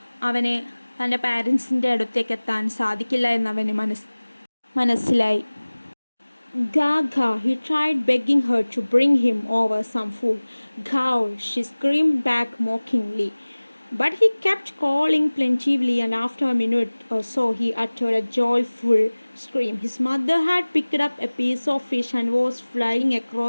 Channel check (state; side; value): inverted; both; correlation -1.00